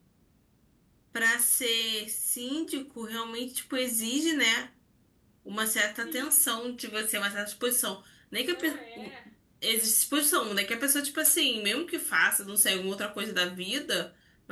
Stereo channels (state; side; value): identical; both; correlation 1.00